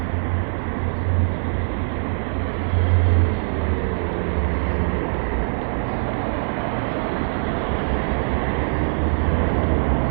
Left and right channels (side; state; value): left; silent; digital silence